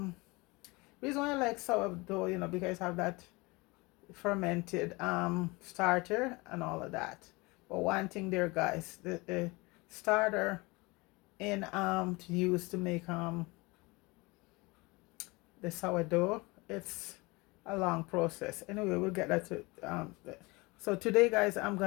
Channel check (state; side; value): quieter; right; 24.6 dB